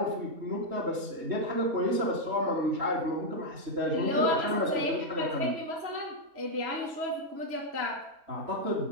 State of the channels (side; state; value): left; late; 3.0 ms